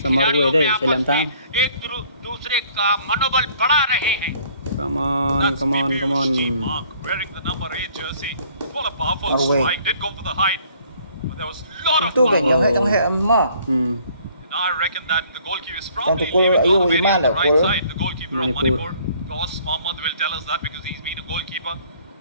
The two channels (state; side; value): inverted; both; correlation -0.59